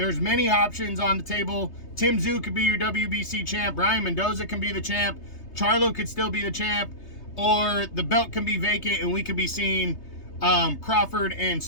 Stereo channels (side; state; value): right; late; 3.3 ms